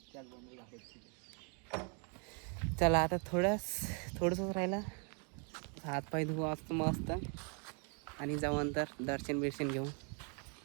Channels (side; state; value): left; quieter; 38.3 dB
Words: त्याच बंदर दाखवतो. चला आता थोडंसंच राहिलं. हातपाय धुवू असतं मस्त आणि जाऊ अंतर दर्शन बिर्शन घेऊ.